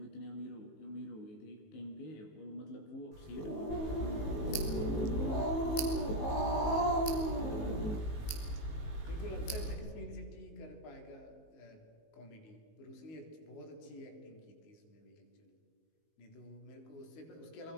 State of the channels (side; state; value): right; late; 19 ms